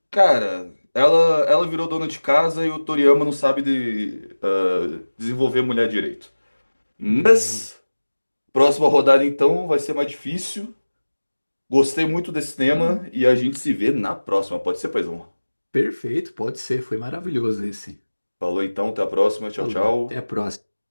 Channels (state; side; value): inverted; both; correlation -1.00